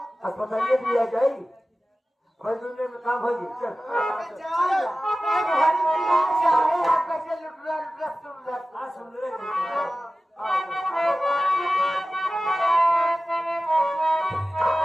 अस्पताल दिया जाएगी दुनिया में काम होगी। चल सुन रहे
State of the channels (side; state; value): both; normal; correlation 0.95